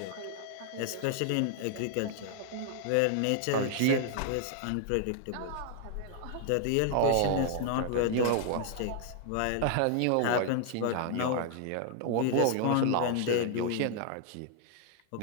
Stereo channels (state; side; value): different; both; correlation 0.00